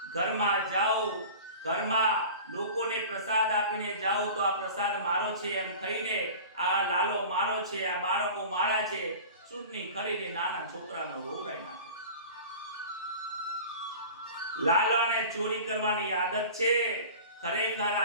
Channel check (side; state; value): both; inverted; correlation -0.38